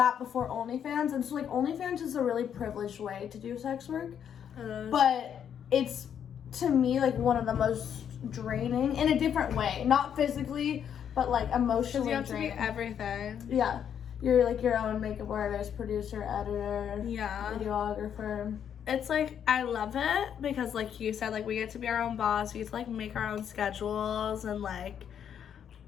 before OnlyFans. And so like OnlyFans is a really privileged way to do sex work. But it's to me like one of the most draining in a different way. Not physically, but like emotionally draining. You have to be everything. Yeah. You're like your own makeup artist, producer, editor, videographer. It's like I love it because like you said, like we get to be our own boss, we get to like make our own schedules and like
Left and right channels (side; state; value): right; quieter; 8.7 dB